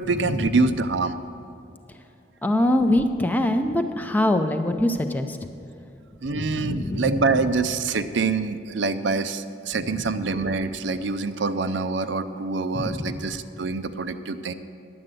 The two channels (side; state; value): both; normal; correlation 0.50